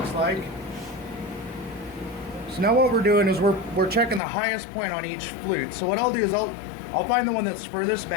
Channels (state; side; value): drops out; right; at 4.2 s